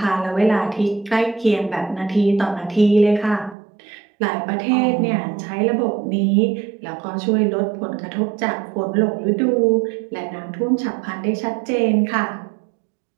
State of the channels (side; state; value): left; drops out; at 3.6 s